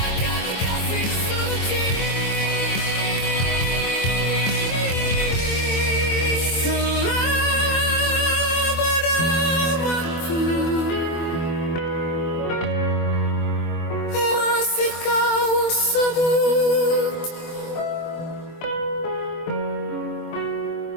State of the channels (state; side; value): late; right; 24 ms